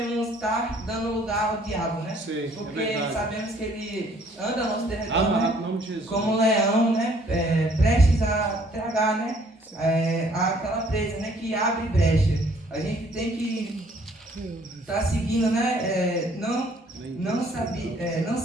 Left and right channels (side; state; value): both; normal; correlation 0.61